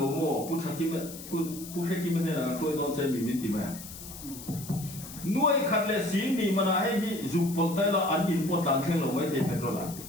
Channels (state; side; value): noise; left; hiss, 13 dB below the sound